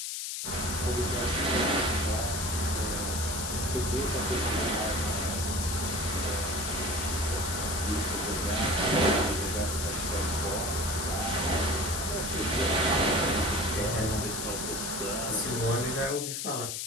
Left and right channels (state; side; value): noise; left; hiss, 3 dB below the sound